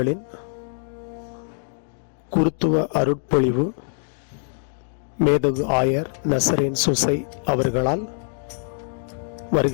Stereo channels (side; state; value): right; silent; digital silence